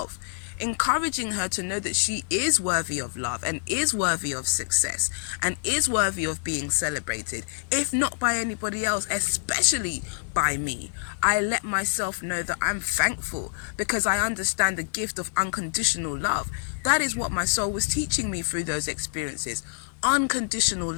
encouraging her to know that she is worthy of love and is worthy of success and is worthy of being celebrated, if not by anybody else, especially by me. I let myself know that I'm thankful because I understand the gift of unconditional love. That is what my soul was teaching me through those experiences, unconditional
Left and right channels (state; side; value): silent; right; digital silence